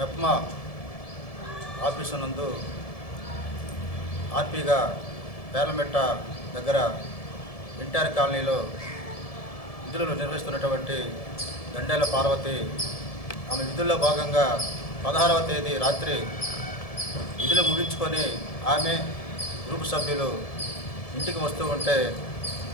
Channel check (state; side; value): late; right; 1.7 ms